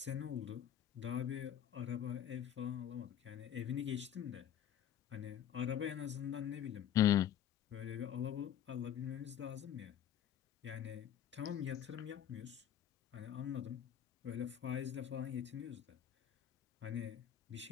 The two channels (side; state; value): right; quieter; 10.1 dB